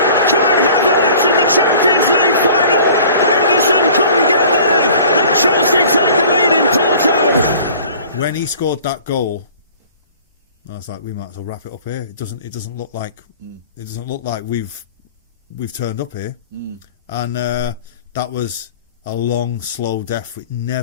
Kai Havertz in the the Champions League final. Edison couldn't get there, and Chelsea take the lead in Porto. When he scored that goal, I was like, we might as well wrap it up here. It doesn't look like we've turned up here. And that was a long, slow death. It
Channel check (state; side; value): inverted; both; correlation -0.47